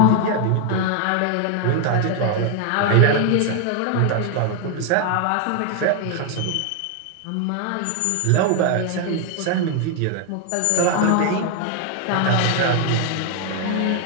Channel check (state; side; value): different; both; correlation 0.00